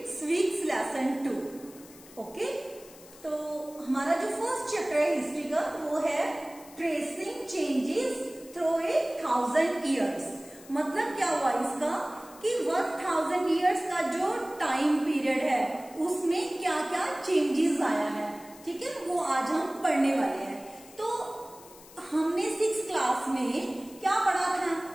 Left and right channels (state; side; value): noise; left; hiss, 21 dB below the sound